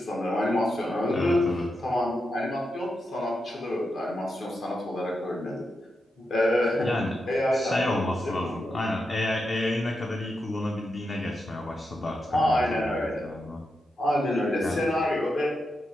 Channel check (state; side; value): normal; both; correlation 0.87